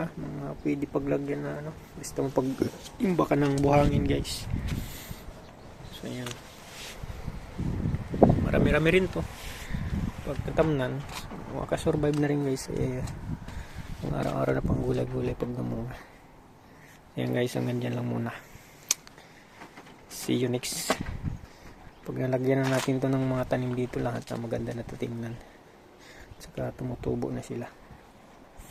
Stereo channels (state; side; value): identical; both; correlation 1.00